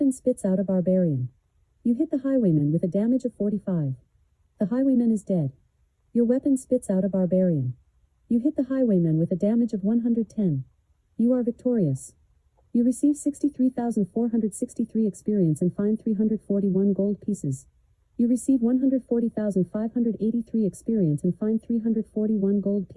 spits out a barbarian. You hit the highwayman with a damage of 45. The highwayman is dead. Your weapon spits out a barbarian. You hit the highwayman with a damage of 110. You are victorious. You receive 63,463 experience and find 341 gold pieces. You receive 140,583 experience and find 341 gold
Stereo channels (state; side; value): identical; both; correlation 1.00